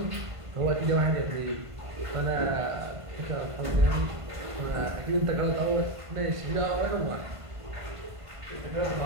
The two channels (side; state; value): left; late; 1.5 ms